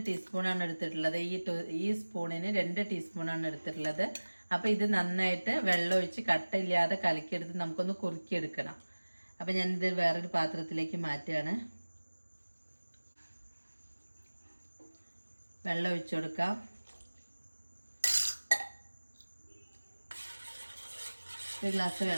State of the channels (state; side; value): inverted; both; correlation -1.00